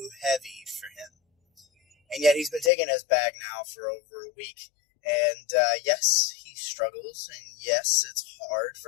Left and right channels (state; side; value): drops out; right; at 2.7 s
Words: heavy for him." And yet he's been taking his bag now for over a week. And yes, he struggles, and yes, it's hard